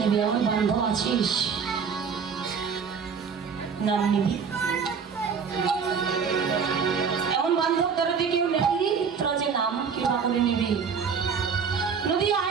আমার বান্ধব আছিস, নাম নিবি। এমন বান্ধব তোরা যে কেউ নেবি, তোরা যে নাম কিবা করে নিবি। নদী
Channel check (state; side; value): quieter; left; 6.2 dB